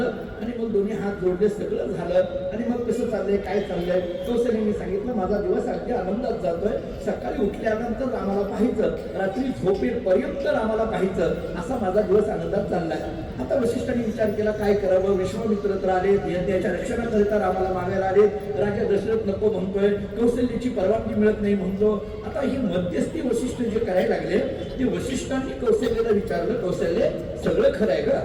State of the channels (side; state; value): both; identical; correlation 1.00